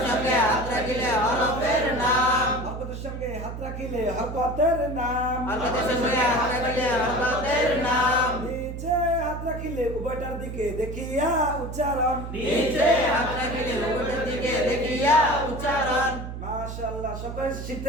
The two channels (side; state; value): right; noise; hum, 8 dB below the sound